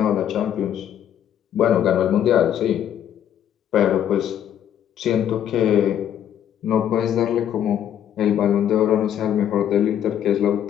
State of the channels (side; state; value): right; quieter; 10.0 dB